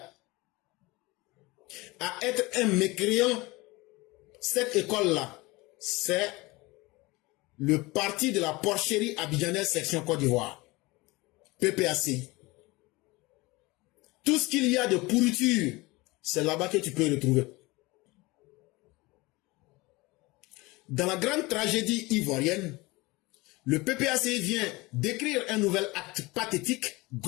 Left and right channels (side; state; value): right; quieter; 22.7 dB